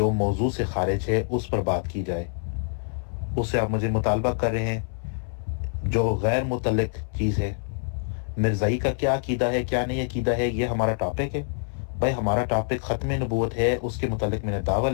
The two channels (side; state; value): right; silent; 61 dB below the other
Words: موضوع سے خارج ہے اس پر بات کی جائے؟ اس سے آپ مجھے مطالبہ کر رہے ہیں جو غیر متعلق چیز ہے۔ مرزائی کا کیا عقیدہ ہے، کیا نہیں عقیدہ ہے، یہ ہمارا ٹاپک ہے؟ بھائی ہمارا ٹاپک ختم نبوت ہے، اس کے متعلق میں نے دعویٰ